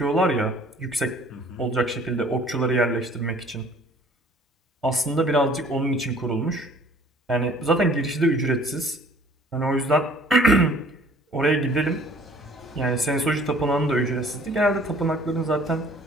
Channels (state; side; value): normal; both; correlation 0.54